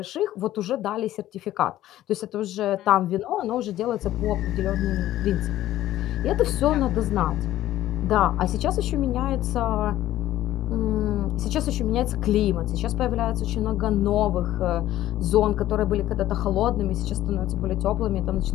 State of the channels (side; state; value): right; quieter; 13.8 dB